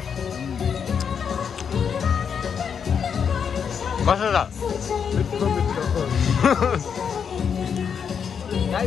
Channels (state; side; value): quieter; right; 7.1 dB